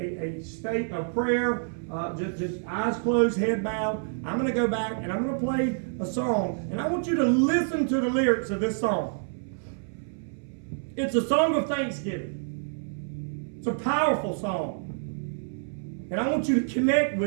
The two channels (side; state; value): left; silent; 60 dB below the other